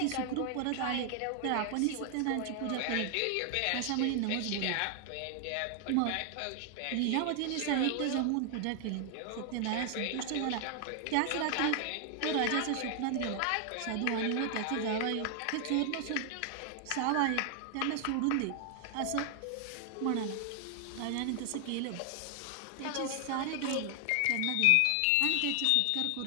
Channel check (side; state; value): both; different; correlation 0.00